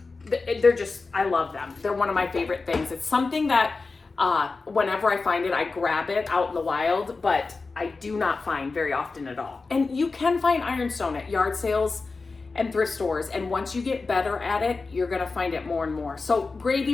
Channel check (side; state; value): right; quieter; 4.0 dB